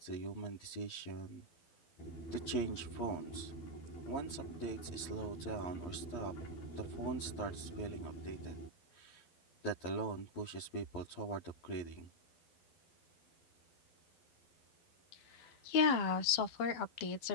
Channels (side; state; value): right; late; 12 ms